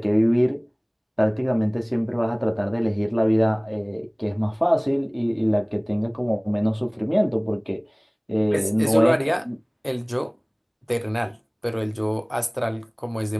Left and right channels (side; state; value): both; identical; correlation 1.00